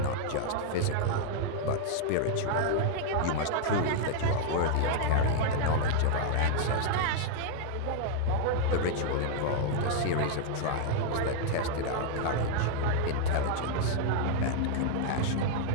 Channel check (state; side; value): different; both; correlation 0.00